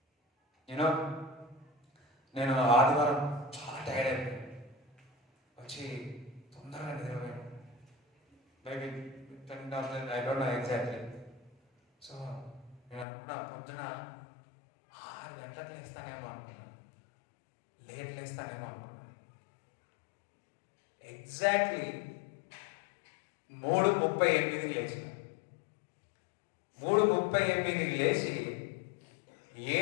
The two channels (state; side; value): drops out; right; at 13.1 s